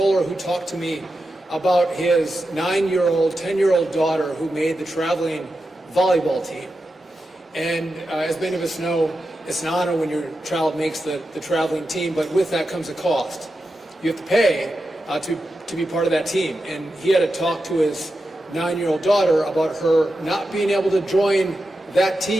who talked to me about his 9-year-old, 10-year-old daughter who made the traveling volleyball team. And as many of us know, it's an honor when your child makes the traveling team, but with that comes a cost. You have to pay to be part of that team. And he had to talk to his 9-year-old daughter about her not being able to join that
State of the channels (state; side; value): normal; both; correlation 0.90